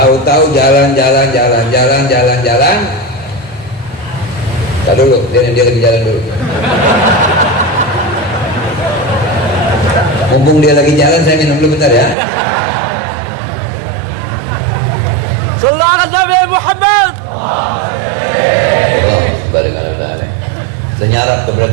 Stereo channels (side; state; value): left; drops out; at 12.2 s